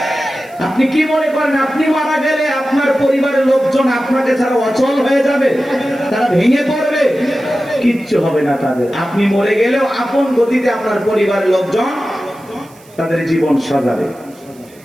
আপনি কি মনে করেন আপনি মারা গেলে আপনার পরিবারের লোকজন আপনাকে ছাড়া অচল হয়ে যাবে, তারা ভেঙে পড়বে? কিচ্ছু হবে না তাদের। আপনি মরে গেলেও আপন গতিতে আপনার পরিবারের লোকজন তাদের জীবন সাজাবে।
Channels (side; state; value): right; noise; hiss, 27 dB below the sound